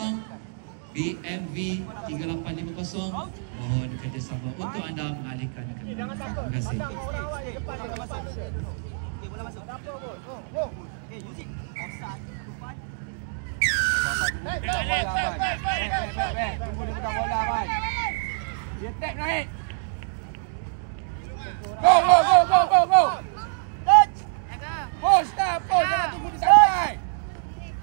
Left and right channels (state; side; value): silent; left; digital silence